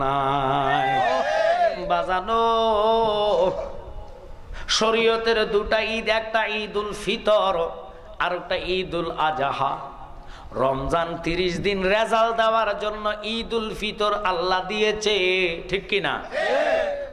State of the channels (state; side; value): identical; both; correlation 1.00